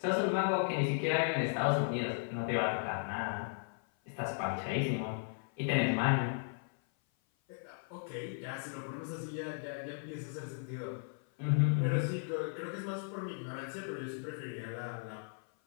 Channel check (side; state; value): right; silent; 54 dB below the other